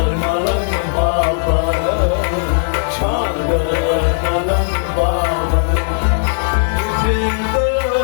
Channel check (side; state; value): right; silent; digital silence